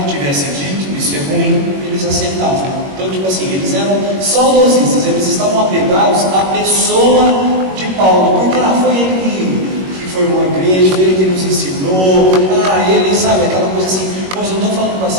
que tivesse dito, isso é ruim, eles aceitavam. Então, tipo assim, eles eram saudosistas, eles estavam apegados à pessoa de Paulo, porque foi ele que formou a igreja, foi ele que nos ensinou, ele, sabe, aquela coisa assim. Mas eu não estou falando para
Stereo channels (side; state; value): left; late; 21 ms